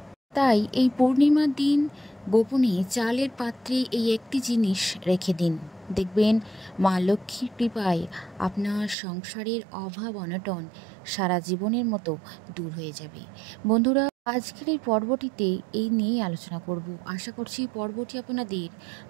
তাই এই পূর্ণিমার দিন গোপনে চালের পাত্রে এই একটি জিনিস রেখে দিন, দেখবেন মা লক্ষ্মীর কৃপায় আপনার সংসারের অভাব অনটন সারা জীবনের মতো দূর হয়ে যাবে। বন্ধুরা, আজকের এই পর্বটিতে এই নিয়েই আলোচনা করব। আশা করছি পর্বটি আপনাদের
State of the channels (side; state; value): left; drops out; at 9.0 s